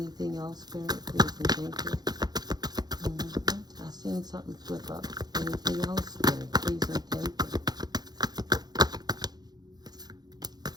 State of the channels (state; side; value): late; left; 0.19 ms